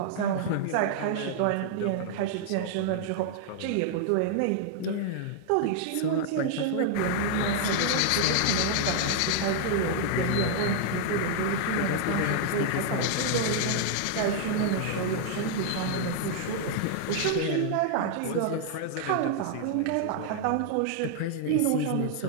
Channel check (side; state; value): both; different; correlation -0.01